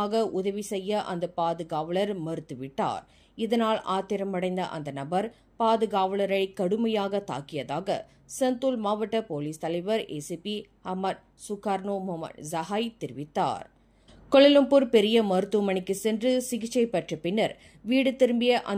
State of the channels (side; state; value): both; identical; correlation 1.00